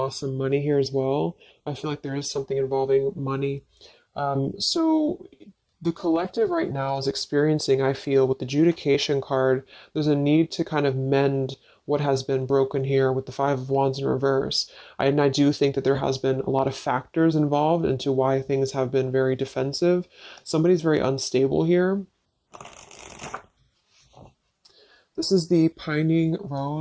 some money here as well. I feel like there is something involving money. So the collective right now is experiencing, I feel, with the adjudication card, there's a need to kind of mend what has been broken here with the Five of Wands in reverse. And I do think that there has been a lot of factors involved into why things have been very defensive. Somebody's very unstable here. This is the Pining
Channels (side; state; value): both; identical; correlation 1.00